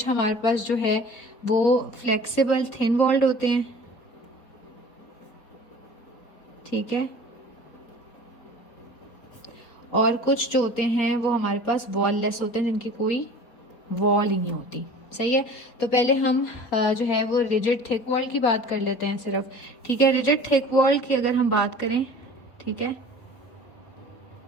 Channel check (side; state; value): right; late; 4.3 ms